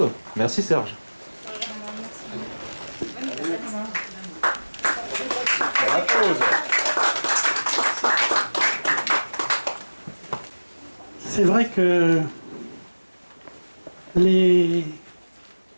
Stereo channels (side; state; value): both; inverted; correlation -1.00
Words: Merci Serge. La pause. C'est vrai que les